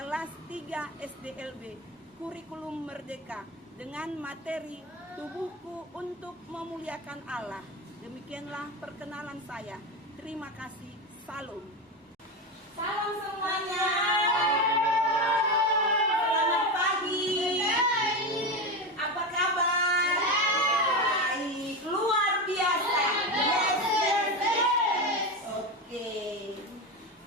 3 SDLB, kurikulum Merdeka, dengan materi Tubuhku untuk Memuliakan Allah. Demikianlah perkenalan saya. Terima kasih. Salam. Salam semuanya. Selamat pagi. Apa kabar? Baik. Luar biasa. Yes. Oke.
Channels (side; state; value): both; normal; correlation 0.18